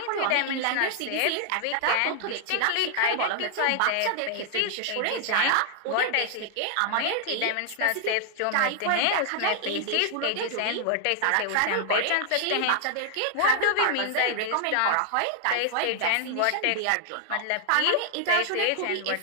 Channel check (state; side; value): different; both; correlation 0.00